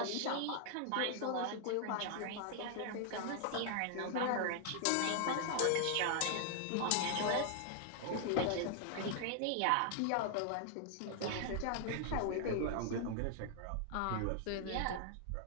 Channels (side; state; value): both; different; correlation 0.00